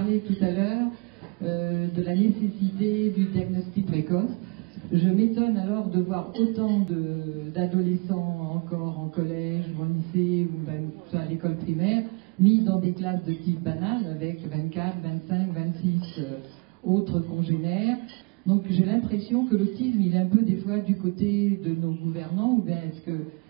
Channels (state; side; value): quieter; left; 29.9 dB